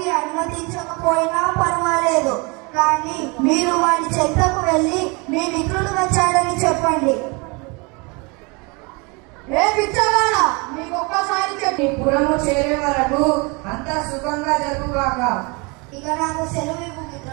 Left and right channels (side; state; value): left; quieter; 29.2 dB